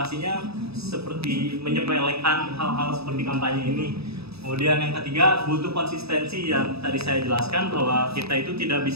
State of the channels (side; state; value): left; late; 0.78 ms